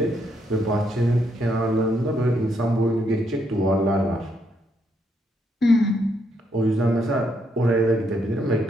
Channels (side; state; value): both; normal; correlation 0.75